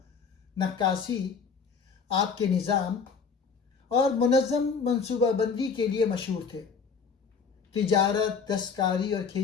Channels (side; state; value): right; quieter; 5.6 dB